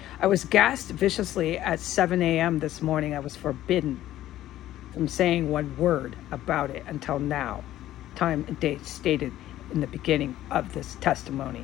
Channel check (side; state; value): right; quieter; 13.7 dB